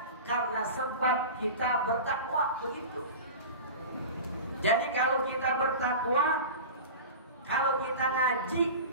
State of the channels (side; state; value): both; inverted; correlation -0.31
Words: karena sebab kita bertakwa, begitu. Jadi kalau kita bertakwa, kalau kita ngaji,